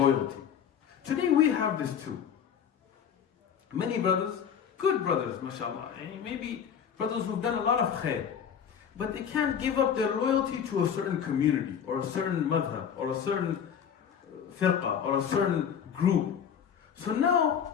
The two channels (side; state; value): right; quieter; 8.0 dB